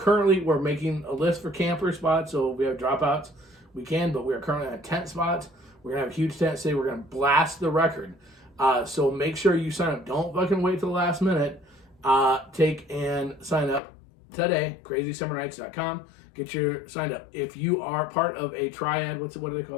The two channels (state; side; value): drops out; right; at 13.8 s